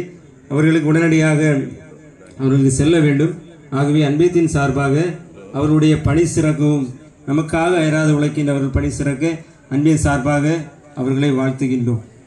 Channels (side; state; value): both; identical; correlation 1.00